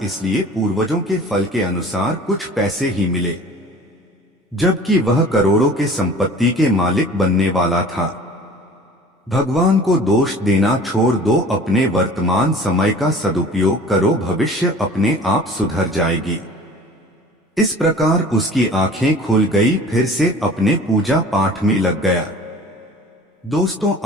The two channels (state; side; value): normal; both; correlation 0.45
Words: इसलिए पूर्वजों के फल के अनुसार कुछ पैसे ही मिले, जबकि वह करोड़ों के संपत्ति के मालिक बनने वाला था। भगवान को दोष देना छोड़ दो, अपने वर्तमान समय का सदुपयोग करो, भविष्य अपने आप सुधर जाएगी। इस प्रकार उसकी आंखें खुल गई, फिर से अपने पूजा पाठ में लग गया। दोस्तों,